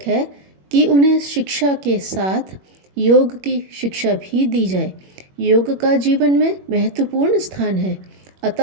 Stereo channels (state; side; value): late; left; 21 ms